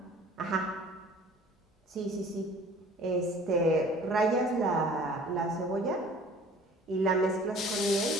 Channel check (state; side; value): normal; both; correlation 0.49